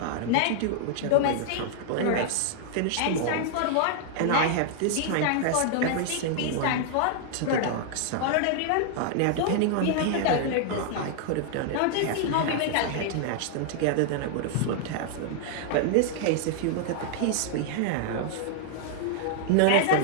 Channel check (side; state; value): both; different; correlation 0.00